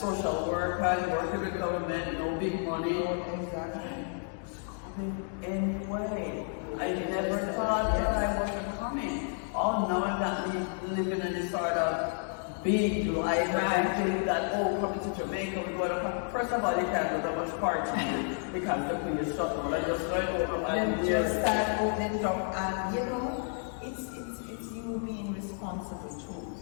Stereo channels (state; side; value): silent; right; 57 dB below the other